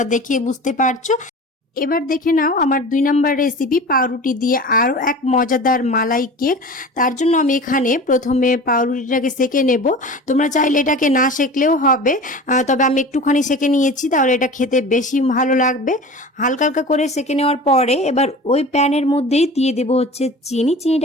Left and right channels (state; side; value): normal; both; correlation 0.36